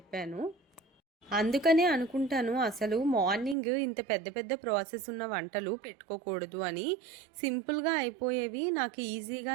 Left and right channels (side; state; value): left; drops out; at 3.6 s